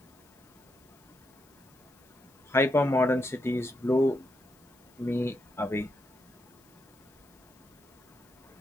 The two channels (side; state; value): left; noise; hiss, 29 dB below the sound